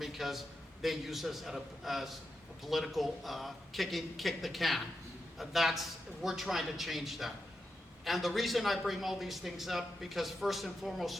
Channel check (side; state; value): both; normal; correlation 0.87